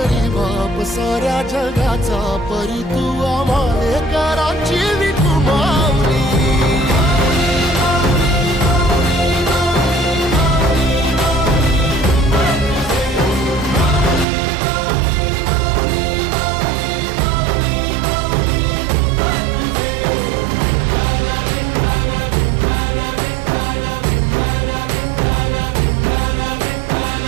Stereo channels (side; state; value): left; drops out; at 14.2 s